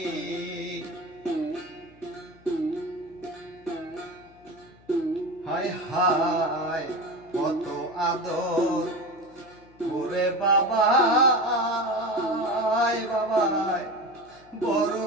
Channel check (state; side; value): noise; left; hum, 28 dB below the sound